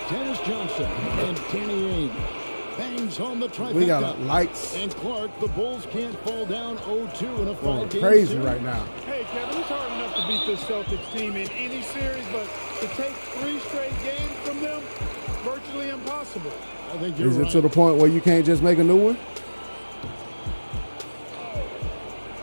Dennis Johnson and Danny Ainge. Bangs home the trifecta. We got likes And Clark, the Bulls can't fall down 0-2 in a going 5-game crazy series. right now. Hey, Kevin, it's hard enough to beat this Celtics team in any series, but to take 3 straight games from them, virtually impossible. I think you're Is it right. to the point where you can't just make a new one?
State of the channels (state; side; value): inverted; both; correlation -1.00